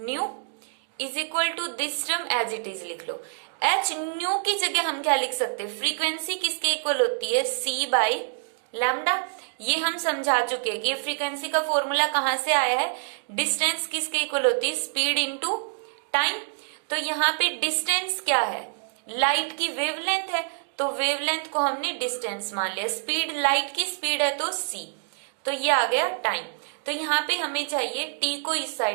= this term as it is लिख लो। hν की जगह हम क्या लिख सकते हैं, फ्रीक्वेंसी किसके इक्वल होती है, c/λ। ये हम समझा चुके हैं कि फ्रीक्वेंसी का फॉर्मूला कहां से आया है, डिस्टेंस किसके इक्वल होती है, स्पीड इनटू टाइम। तो यहाँ पे डिस्टेंस क्या है, लाइट की वेवलेंथ है, तो वेवलेंथ को हमने डिस्टेंस मान लिया। स्पीड, लाइट की स्पीड है तो c, तो ये आ गया टाइम। तो यहाँ पे हमें चाहिए t को इस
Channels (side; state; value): left; silent; digital silence